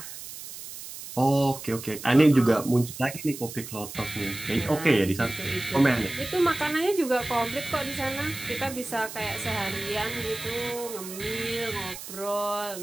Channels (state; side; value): noise; right; hiss, 11 dB below the sound